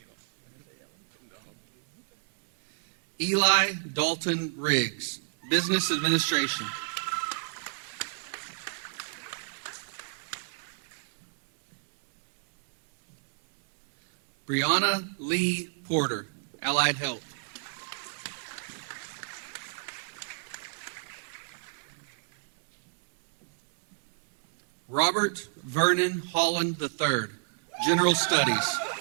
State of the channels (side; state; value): left; silent; 57 dB below the other